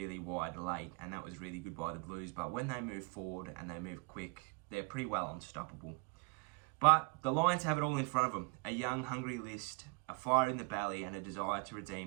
wide late, and that was really good by the Blues. But when they move forward and they move quick, they're pretty well unstoppable. But the Lions have it all in front of them. A young, hungry list, a fire in the belly, and a desire to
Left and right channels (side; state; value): left; quieter; 30.5 dB